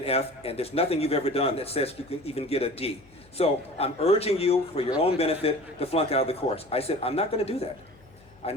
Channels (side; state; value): left; noise; hum, 27 dB below the sound